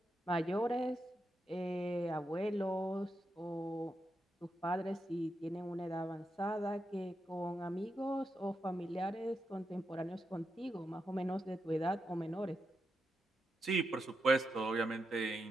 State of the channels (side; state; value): both; normal; correlation 0.85